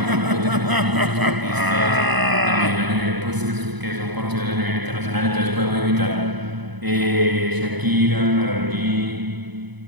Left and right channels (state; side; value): late; left; 1.0 ms